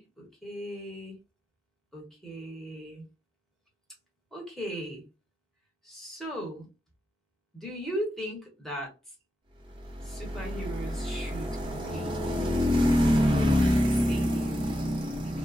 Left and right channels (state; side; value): normal; both; correlation 0.87